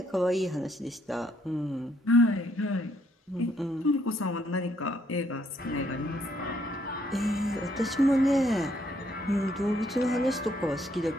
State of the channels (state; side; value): normal; both; correlation 0.70